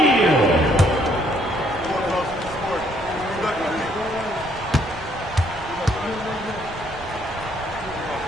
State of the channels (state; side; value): normal; both; correlation 0.67